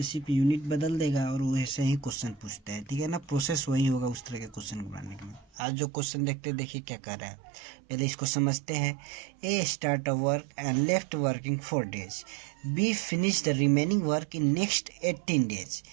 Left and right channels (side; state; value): left; drops out; at 5.6 s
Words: सिर्फ यूनिट बदल देगा और वो ऐसे ही क्वेश्चन पूछते हैं, ठीक है ना। प्रोसेस वही होगा उस तरह के क्वेश्चन को बनाने के लिए। आज जो क्वेश्चन देखते हैं, देखिए क्या कर रहा है, पहले इसको समझते हैं। A start a work and left working 4 days, B finish the remaining work in next 18 days।